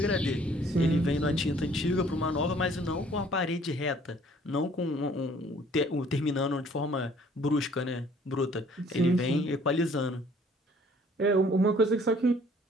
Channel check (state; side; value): normal; both; correlation 0.57